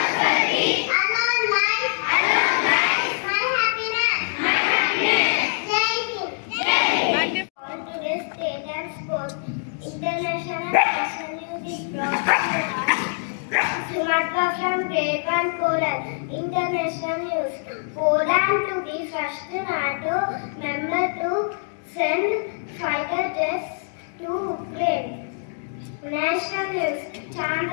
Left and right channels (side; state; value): right; silent; digital silence